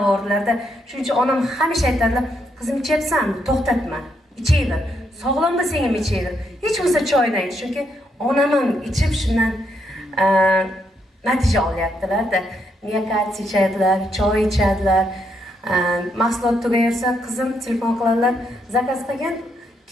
Shuning uchun onam hamisha aytadilar, "Qizim, ichayapsan, to'xtatma, ichayver. Sog'lom bo'lsang ham ichayver. Hech bo'lsa choyni ich." Chunki onam ham ichib shundan natija olyaptilar-da. Miyokard ichadilar, choy ichadilar. Mahsulot tugaversa, qizim telefon qiladilar, "Zakaz qilgan,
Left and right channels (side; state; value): both; normal; correlation 0.77